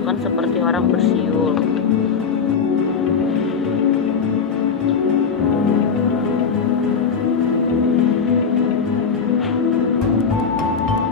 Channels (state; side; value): quieter; right; 5.9 dB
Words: seperti orang bersiul.